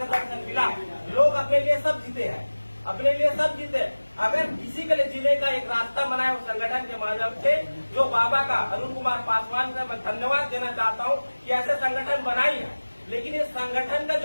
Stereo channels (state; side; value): inverted; both; correlation -1.00